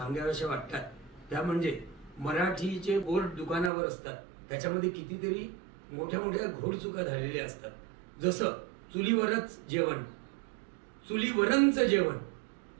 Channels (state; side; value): drops out; left; at 3.7 s